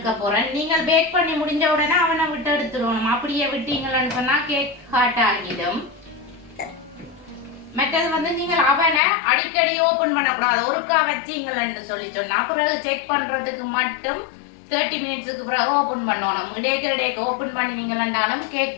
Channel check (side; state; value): right; drops out; at 9.0 s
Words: போகிறேன். நீங்கள் பேக் பண்ணி முடிஞ்ச உடனே அவனை விட்டு எடுத்துடணும். அப்படியே விட்டீங்கன்னு சொன்னால் கேக் ஹாட் ஆகிடும். மற்றது வந்து நீங்கள் அவனை அடிக்கடி ஓப்பன் பண்ணக்கூடாது. ஒருக்கா வச்சிங்கன்னு சொல்லி சொன்னால் பிறகு செக் பண்ணுறதுக்கு மட்டும் 30 மினிட்ஸுக்கு பிறகு ஓப்பன் பண்ணணும். இடைக்கு ஓப்பன் பண்ணினீங்கன்னாலும்